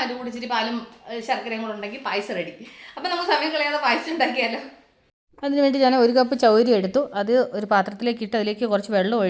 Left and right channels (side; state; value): both; identical; correlation 1.00